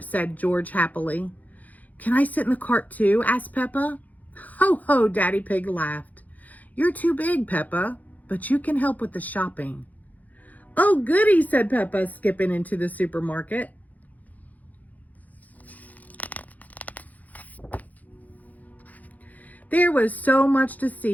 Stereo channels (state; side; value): late; right; 0.079 ms